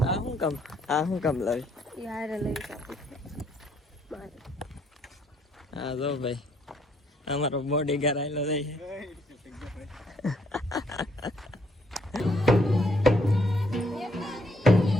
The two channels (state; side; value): normal; both; correlation 0.69